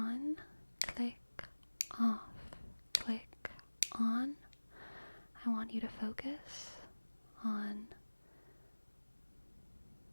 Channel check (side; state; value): both; inverted; correlation -1.00